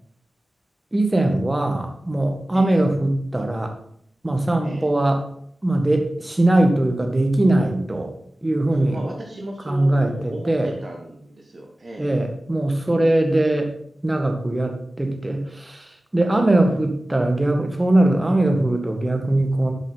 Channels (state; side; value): normal; both; correlation 0.96